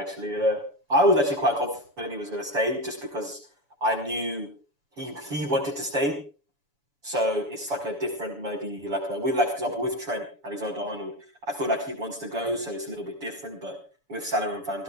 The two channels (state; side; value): late; left; 7.0 ms